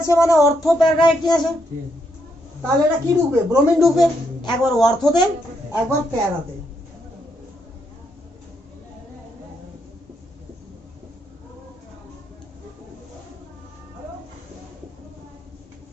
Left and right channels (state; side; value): normal; both; correlation 0.77